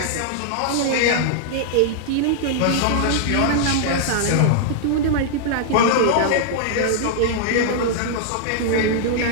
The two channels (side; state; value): both; different; correlation -0.01